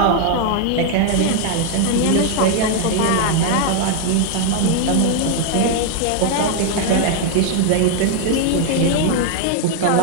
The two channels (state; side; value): different; both; correlation 0.00